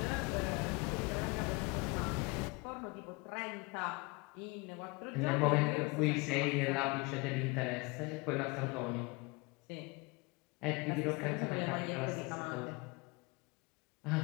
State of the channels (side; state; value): right; quieter; 27.3 dB